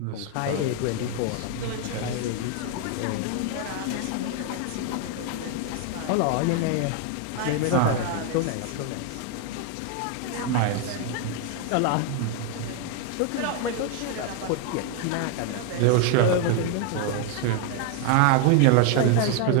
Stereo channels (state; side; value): different; both; correlation 0.01